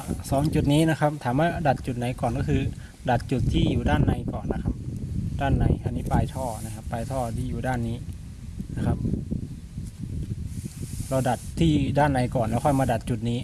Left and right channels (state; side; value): identical; both; correlation 1.00